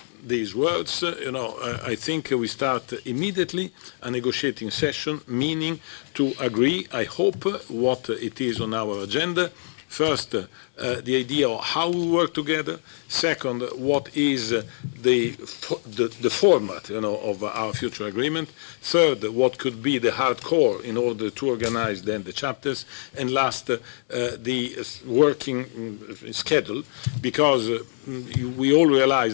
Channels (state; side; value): silent; right; 62 dB below the other